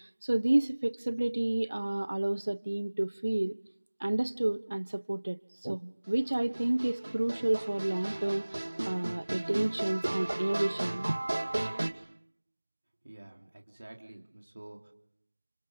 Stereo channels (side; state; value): both; inverted; correlation -1.00